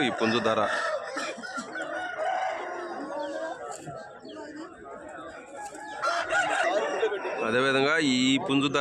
ఈ పుంజు ధర. అదేవిధంగా ఈ పుంజు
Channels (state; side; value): identical; both; correlation 1.00